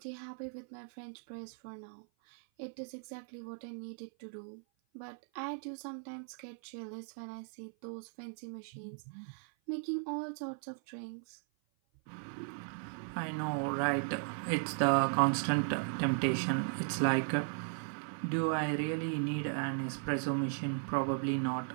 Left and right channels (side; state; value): left; silent; 53 dB below the other